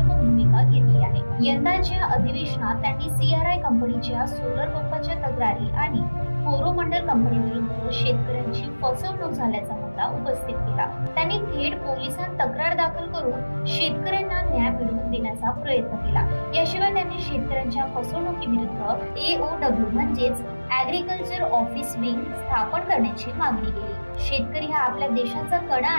भूमिका घेतली आहे। यंदाच्या अधिवेशनात त्यांनी CRI कंपनीच्या सोलर पंपाच्या तक्रारी आणि कोरोमंडल कंपनी विरुद्ध शेतकऱ्यांची फसवणूक झाल्याचा मुद्दा उपस्थित केला। त्यांनी थेट पोलिसांत तक्रार दाखल करून शेतकऱ्यांना न्याय मिळवून देण्याचा प्रयत्न केला। याशिवाय त्यांनी शेतकऱ्यांच्या फसवणुकीविरुद्ध AOW म्हणजेच ऍग्रीकल्चर ऑफिस विंग स्थापन करण्याची मागणी केली। शेतकरी हा आपल्या देशाचा कणा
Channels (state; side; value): inverted; both; correlation -1.00